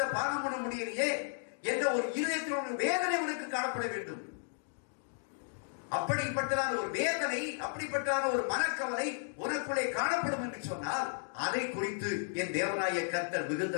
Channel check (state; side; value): silent; right; digital silence